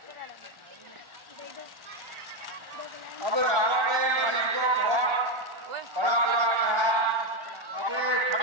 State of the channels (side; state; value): left; late; 1.3 ms